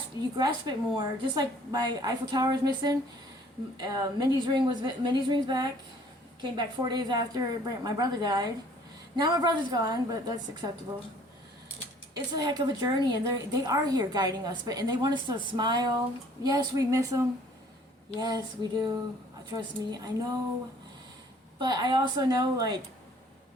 it more. Just like my Eiffel Tower is missing, Mindy's ring's back. Came back 4 days after my brother died. Now my brother's gone, but that's acceptable. It's a heck of a journey, and they are here guiding us, and they want us to smile. Yes, we miss them. Yes, we do. Trust me, I know. But I also know, like,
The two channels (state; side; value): normal; both; correlation 0.56